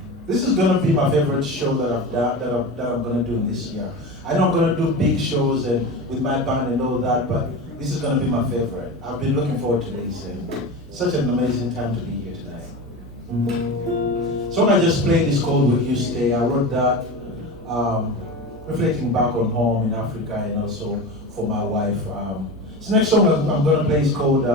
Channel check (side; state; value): both; normal; correlation 0.26